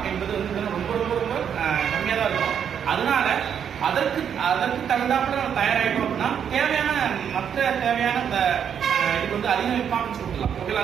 என்பது வந்து ரொம்ப ரொம்ப ரொம்ப கம்மியாக தான் இருக்கும். அதனால அதற்கு தகுந்தாப்புல நம்ம தயாராகிட்டோம் அப்படின்னா தேவையான மற்ற தேவையான இது வந்து அதிக இம்பார்ட்டன்ஸ் கொடுக்கலாம்.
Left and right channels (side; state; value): left; quieter; 8.2 dB